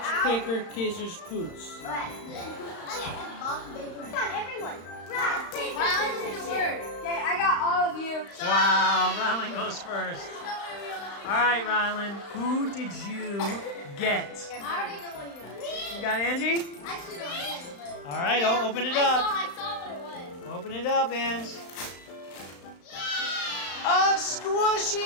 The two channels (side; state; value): right; late; 35 ms